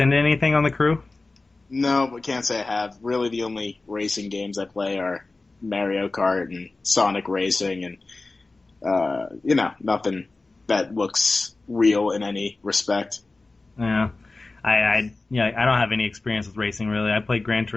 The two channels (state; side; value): quieter; right; 3.4 dB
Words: anything on The Crew? No, but can't say I have. Really, the only racing games I play are Mario Kart and Sonic Racing, and nothing that looks real in any respect. Yeah, I don't have any experience with racing really. I played Gran